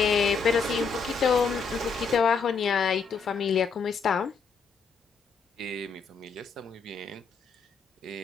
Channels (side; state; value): right; quieter; 5.3 dB